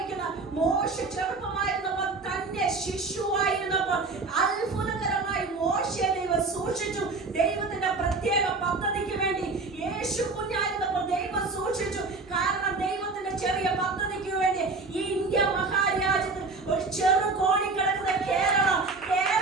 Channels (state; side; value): quieter; left; 3.8 dB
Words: മോശ ചെറുപ്പമായിരുന്നപ്പോൾ തന്നെ ശിശുവായിരുന്നപ്പോൾ അത്ഭുതകരമായി മോശയെ ദൈവം സൂക്ഷിച്ചു. ദൈവത്തിന്റെ പ്രത്യേക പദ്ധതിക്ക് വേണ്ടി യേശു കുഞ്ഞായിരുന്നപ്പോൾ ദൈവം സൂക്ഷിച്ചു. കാരണം ദൈവത്തിന്റെ ചെറിയ പദ്ധതിക്ക് വേണ്ടി ഈ ഇന്ത്യ മഹാരാജ്യത്തിൽ ഒരു ചെറു കോണി കിടക്കുന്ന